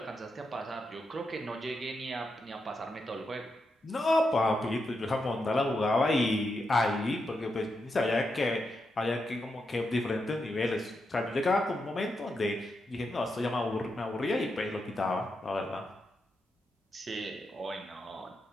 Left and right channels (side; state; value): both; normal; correlation 0.85